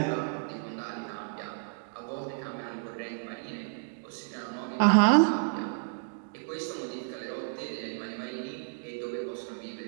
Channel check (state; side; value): silent; left; digital silence